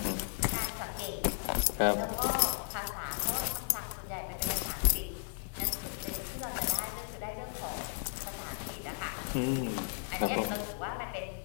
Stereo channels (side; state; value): right; silent; digital silence